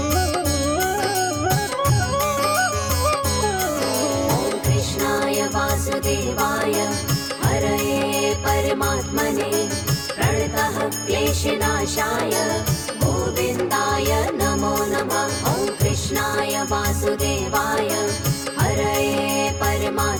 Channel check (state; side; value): identical; both; correlation 1.00